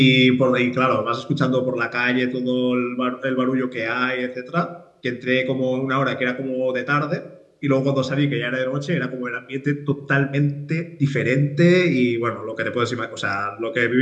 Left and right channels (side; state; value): both; identical; correlation 1.00